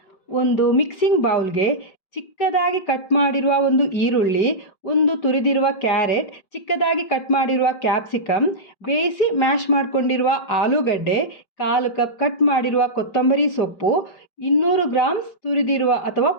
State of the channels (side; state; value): right; late; 5.2 ms